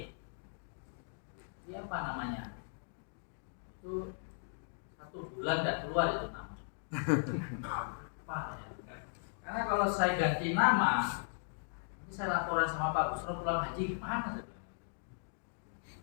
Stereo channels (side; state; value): right; silent; digital silence